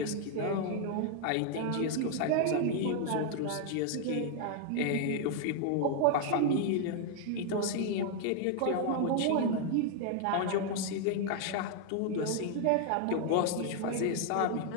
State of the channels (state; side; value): different; both; correlation 0.00